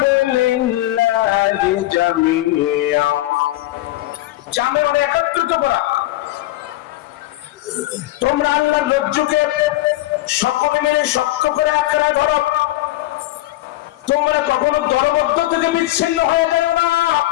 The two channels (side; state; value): right; quieter; 16.6 dB